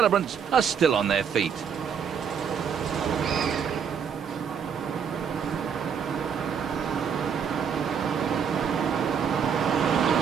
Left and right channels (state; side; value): quieter; left; 7.2 dB